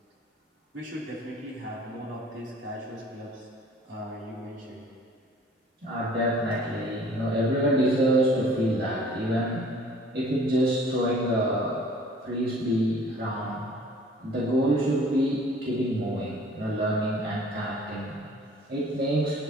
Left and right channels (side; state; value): both; normal; correlation 0.52